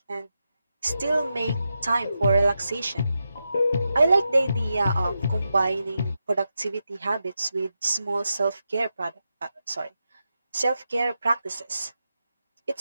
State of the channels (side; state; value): both; inverted; correlation -0.88